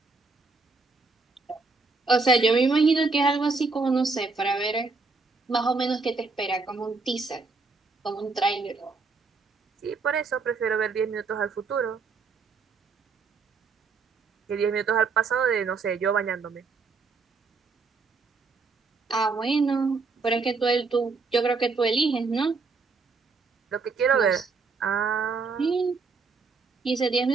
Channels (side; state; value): left; quieter; 4.3 dB